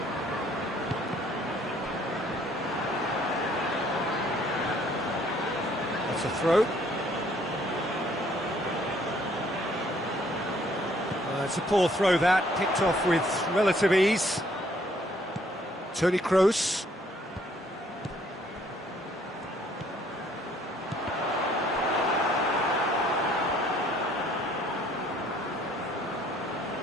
That's a throw. It's a poor throw that, picked off with relative ease. Toni Kroos.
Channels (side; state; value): both; normal; correlation 0.63